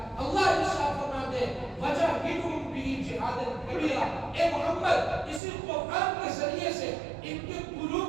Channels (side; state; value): left; drops out; at 5.4 s